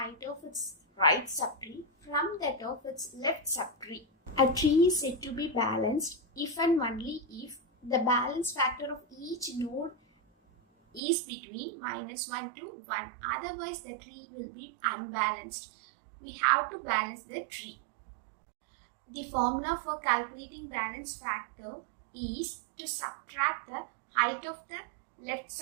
of its right subtree from that of its left subtree. A tree is said to be balanced if and only if the balance factor of each node is between -1 to 1. Otherwise, the tree will be unbalanced. We have to balance the tree. The formula for calculating balance factor is to subtract the height of the left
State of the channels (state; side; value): drops out; left; at 11.0 s